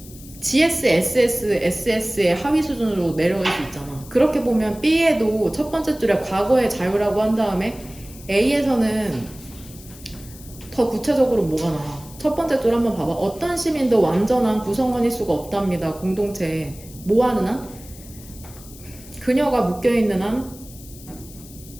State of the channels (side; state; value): left; noise; hiss, 19 dB below the sound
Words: GS, SS, SS의 하위 수준으로 내려갈 수 있잖아. 그렇게 보면 B에도 첫 번째 줄에 과거의 자유라고 한 다음에 A에서는 더 구체적으로 뭐가 나와? 첫 번째 줄 한번 봐봐. 어떤 시민도 완전한 구성원일 수가 없답니다. 공동체에. 뭐 하는 한? 그녀가 묶여있는 한